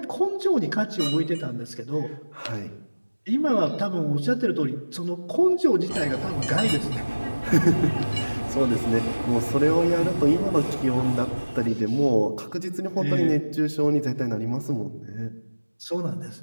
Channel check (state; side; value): inverted; both; correlation -1.00